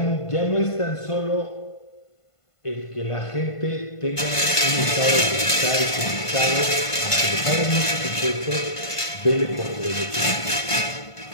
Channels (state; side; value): late; right; 1.5 ms